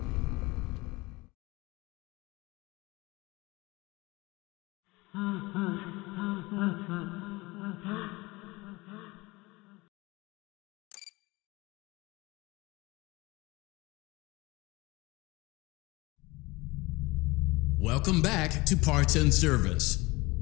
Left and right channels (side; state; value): right; quieter; 22.1 dB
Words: Welcome back to Parts and Service.